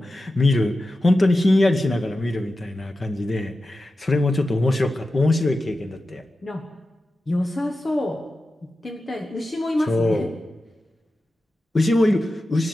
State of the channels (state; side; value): normal; both; correlation 0.92